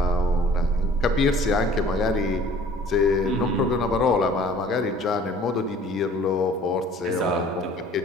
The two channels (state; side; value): normal; both; correlation 0.51